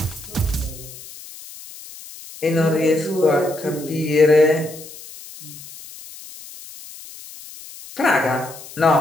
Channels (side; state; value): left; noise; hiss, 16 dB below the sound